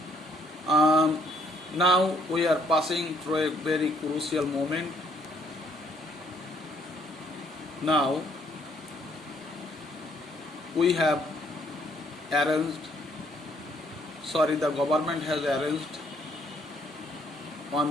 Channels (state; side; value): normal; both; correlation 0.66